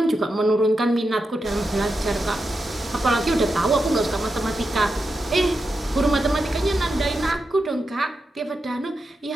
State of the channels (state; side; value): normal; both; correlation 0.88